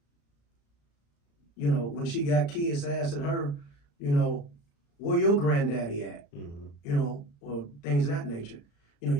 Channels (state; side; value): late; right; 35 ms